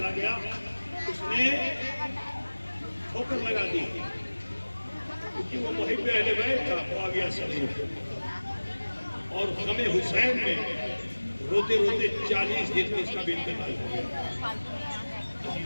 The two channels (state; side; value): inverted; both; correlation -1.00